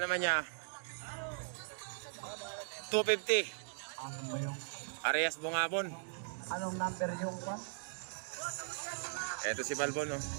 naman niya, 250. Arias Bungabon. Anong number yung one? Ito si Balbon, no?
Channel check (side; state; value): left; silent; digital silence